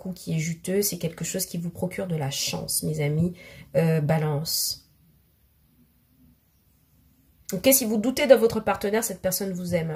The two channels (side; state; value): both; identical; correlation 1.00